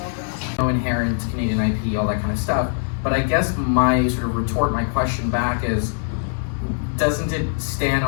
girls. No inherent Canadian IP, all that kind of stuff. But I guess my sort of retort, my question back is, doesn't it stand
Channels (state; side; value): silent; right; digital silence